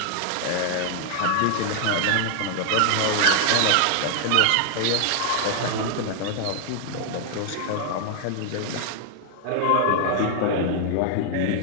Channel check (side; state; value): both; different; correlation 0.00